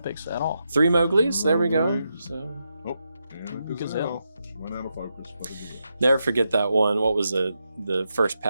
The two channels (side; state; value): both; inverted; correlation -0.85